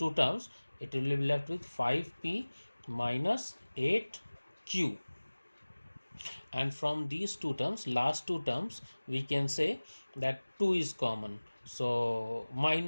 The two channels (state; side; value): inverted; both; correlation -1.00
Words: terms, it will be left with 5p minus 8q, and from these two terms, last two terms, we can say that 2 is common, so